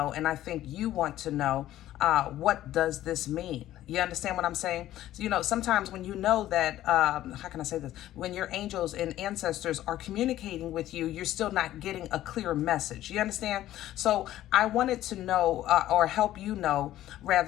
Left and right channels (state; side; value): quieter; right; 13.7 dB